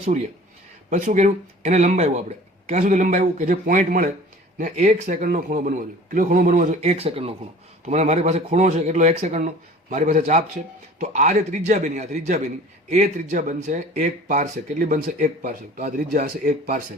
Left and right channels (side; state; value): both; normal; correlation 0.45